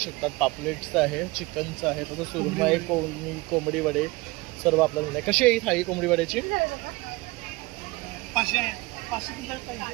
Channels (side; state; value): left; quieter; 22.7 dB